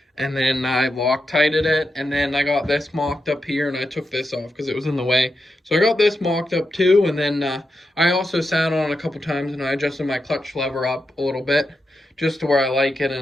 And then I Loctited it, and then I got this mocked up here, and I took this off because it was in the way. So I got this mocked up too, and then I also sat on it a couple times, and I adjusted my clutch lever up a little bit, just to where I like it,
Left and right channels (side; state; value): both; normal; correlation 0.87